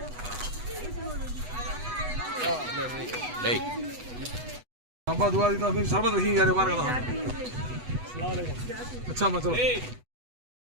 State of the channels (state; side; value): late; left; 8.1 ms